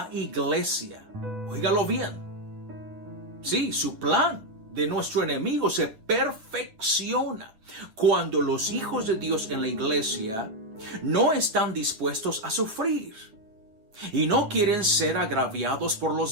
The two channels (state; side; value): late; left; 9.3 ms